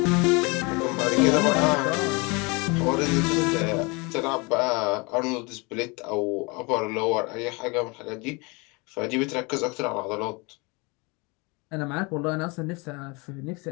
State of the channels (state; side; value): quieter; right; 28.1 dB